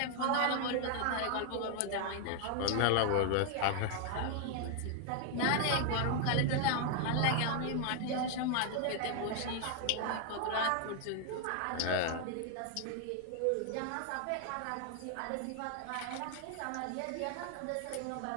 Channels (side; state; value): both; different; correlation 0.00